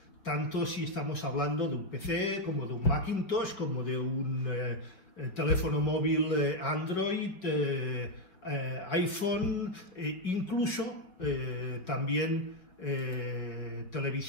Tanto si estamos hablando de un PC, como de un Macintosh, como de un teléfono móvil Android, iPhone, incluso también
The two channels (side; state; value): right; late; 5.2 ms